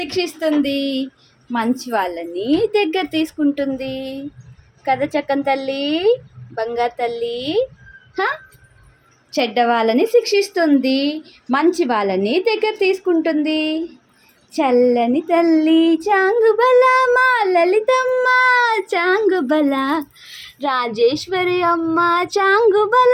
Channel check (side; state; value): both; identical; correlation 1.00